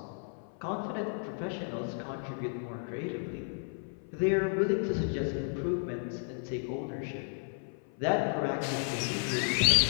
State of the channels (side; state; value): right; silent; 56 dB below the other